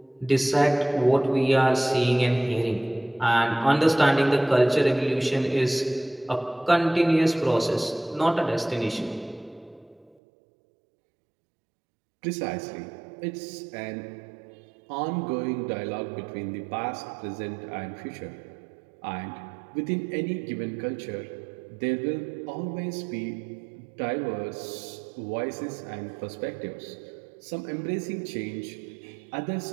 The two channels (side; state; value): left; drops out; at 10.2 s